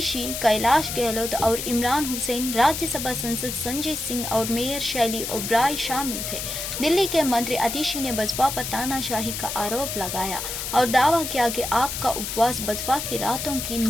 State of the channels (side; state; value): left; noise; hiss, 5 dB below the sound